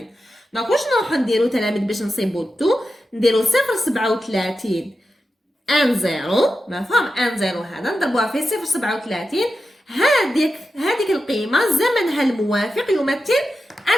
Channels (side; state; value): both; normal; correlation 0.90